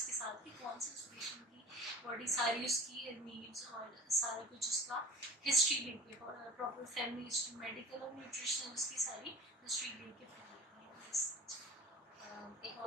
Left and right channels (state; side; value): normal; both; correlation 0.39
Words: के साथ, कि कौन से उस पेशेंट की बॉडी सारी उसकी नीड्स और सारा कुछ उसका हिस्ट्री लेके, प्रॉपर फैमिली हिस्ट्री, मेडिकल और न्यूट्रिशनल उसकी सारी हिस्ट्री लेके फिर एक